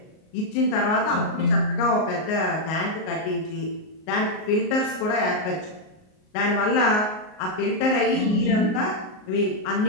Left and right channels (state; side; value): late; right; 38 ms